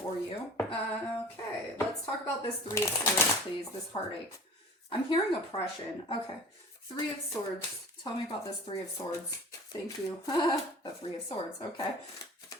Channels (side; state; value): both; normal; correlation 0.41